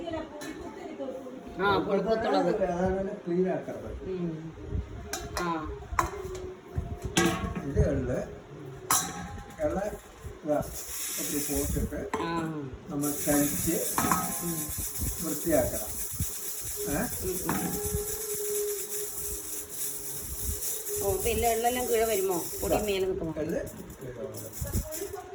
പുഴുക്കത്തുള്ളത് ക്ലീൻ ആക്കരുത്. ഇത് എള്ള് പോട്ടിട്ട് നമ്മൾ കഴിച്ച് വൃത്തിയാക്കണം. പിന്നെ എള്ളെല്ലാം കീഴ വരുമോ? പൊടി മേലെ നിൽക്കുമോ?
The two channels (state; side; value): identical; both; correlation 1.00